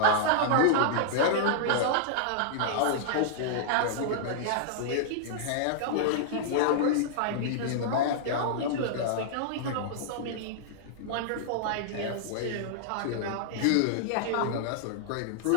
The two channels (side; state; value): both; different; correlation -0.01